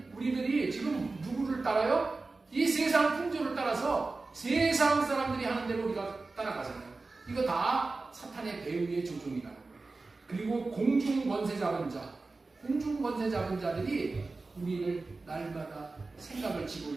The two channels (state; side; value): quieter; left; 3.6 dB